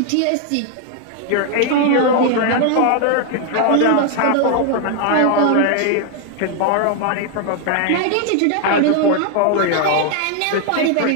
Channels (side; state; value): both; different; correlation 0.00